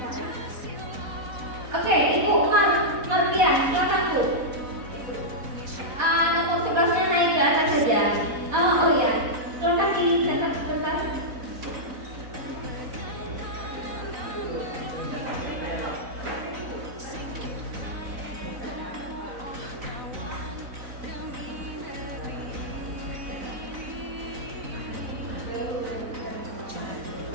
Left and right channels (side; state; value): left; late; 4.0 ms